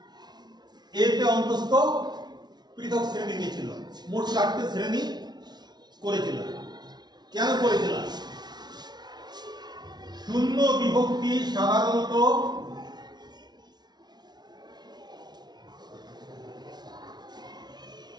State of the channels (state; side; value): late; left; 0.20 ms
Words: এতে অন্তস্থ পৃথক শ্রেণী ছিল। মোট 4টে শ্রেণী করেছিলাম। কেন করেছিলাম? শূন্য বিভক্তি সাধারণত